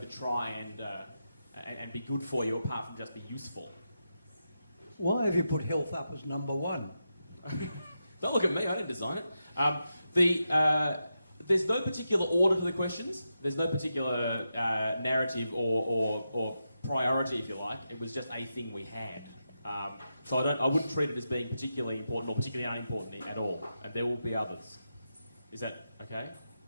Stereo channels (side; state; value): both; inverted; correlation -0.87